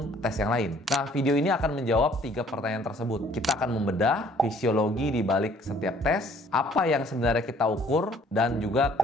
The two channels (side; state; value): both; normal; correlation 0.58